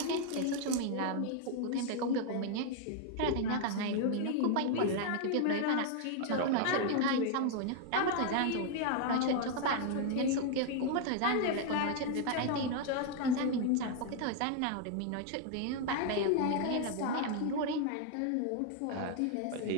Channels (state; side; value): different; both; correlation 0.00